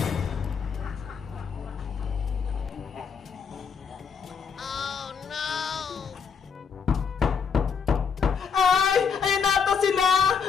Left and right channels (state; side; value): quieter; right; 6.4 dB